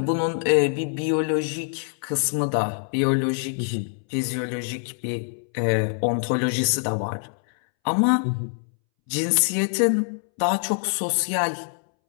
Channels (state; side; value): silent; right; 62 dB below the other